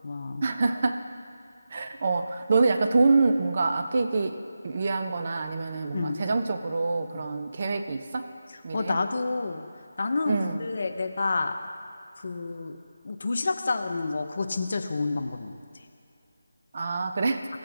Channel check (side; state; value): both; inverted; correlation -0.91